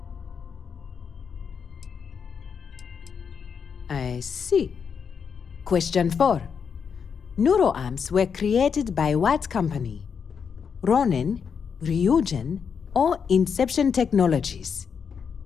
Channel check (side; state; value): right; quieter; 6.6 dB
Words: I see. Question 4. Neuroarms were created by what company? Ronin, Ryujin, or Inception Technologies?